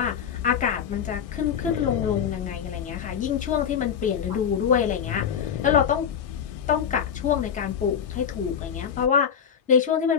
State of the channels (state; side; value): quieter; right; 7.8 dB